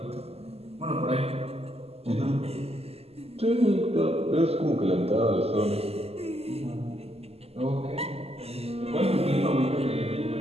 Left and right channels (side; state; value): left; late; 0.29 ms